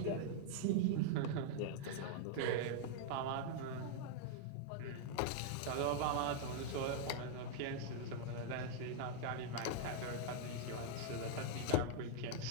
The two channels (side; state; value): both; different; correlation -0.01